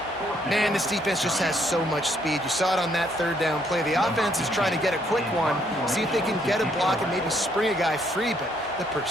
Man, this defense just has so much speed. You saw it on that third down play. The offense is trying to get a quick one, see if they can get a block and maybe spring a guy free, but the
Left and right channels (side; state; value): both; normal; correlation 0.70